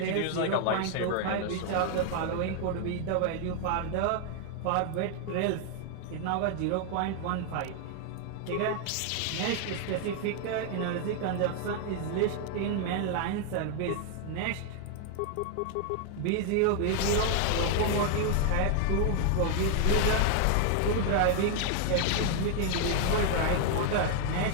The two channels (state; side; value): different; both; correlation 0.00